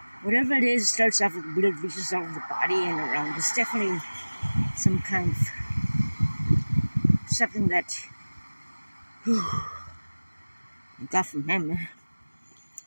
Whatever it is, starts off with weird lesions all over the body and around. It's definitely some kind of something that I got from him.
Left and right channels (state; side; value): inverted; both; correlation -1.00